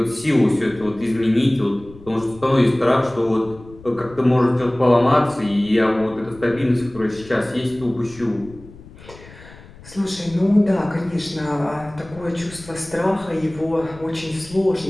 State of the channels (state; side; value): noise; left; rumble, 20 dB below the sound